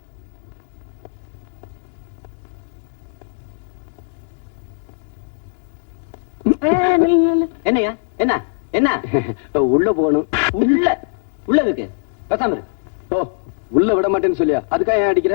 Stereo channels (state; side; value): silent; right; 65 dB below the other